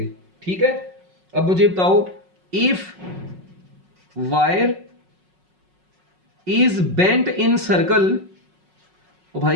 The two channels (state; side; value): late; left; 5.4 ms